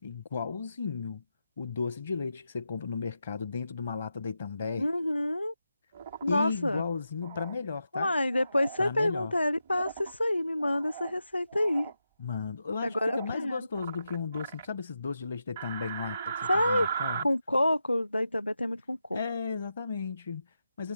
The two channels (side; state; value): both; inverted; correlation -0.88